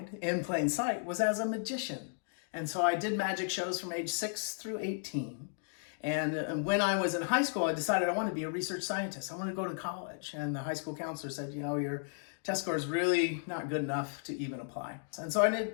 in plain sight was as a magician. And so I did magic shows from age 6 through 18. And when I was in high school, I decided I wanted to be a research scientist. I wanted to go to college. And the high school counselor said, you know, your test score is really not good enough to even apply. And so I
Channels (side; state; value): right; silent; digital silence